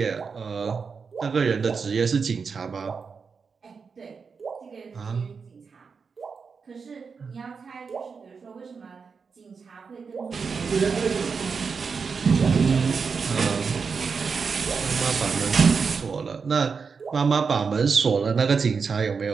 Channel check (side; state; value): left; quieter; 5.4 dB